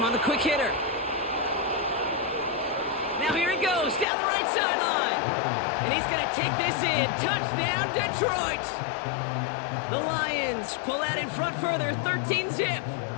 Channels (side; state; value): right; drops out; at 4.0 s